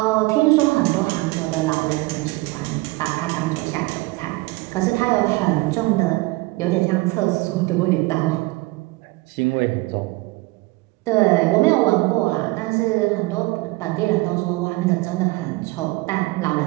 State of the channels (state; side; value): quieter; left; 22.1 dB